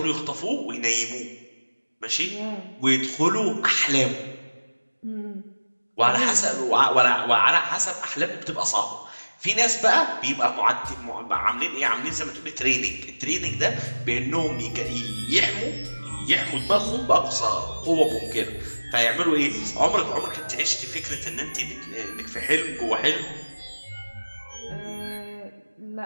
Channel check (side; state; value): both; inverted; correlation -1.00